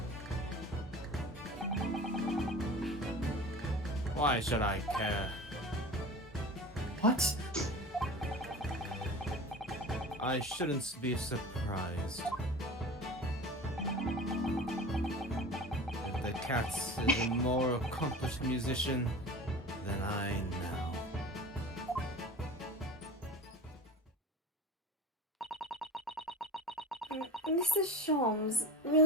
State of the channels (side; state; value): both; normal; correlation 0.35